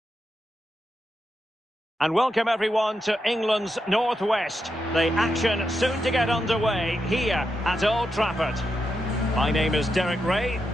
And welcome everyone to England's Northwest. The action soon to get underway here at Old Trafford. My name is Derek Ray,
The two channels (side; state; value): both; normal; correlation 0.86